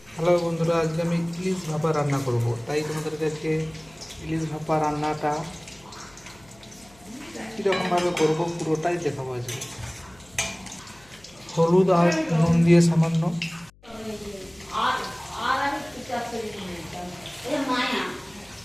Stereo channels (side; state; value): left; noise; hum, 27 dB below the sound